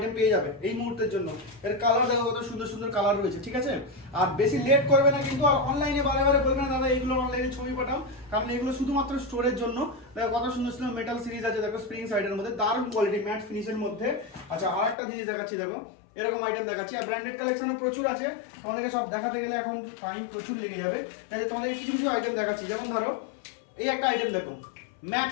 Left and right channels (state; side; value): drops out; right; at 15.0 s